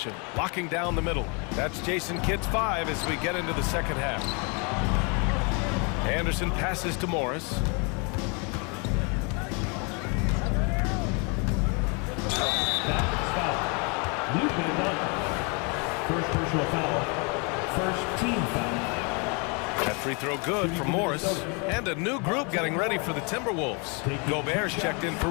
locking down the middle. That's Jason Kidd's 5 as we get into the second half. Anderson passes to Morris. First personal foul. First team foul. That free throw good for Morris. And a new group getting ready for the Timberwolves. Gobert's checked in for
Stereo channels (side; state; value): right; quieter; 33.0 dB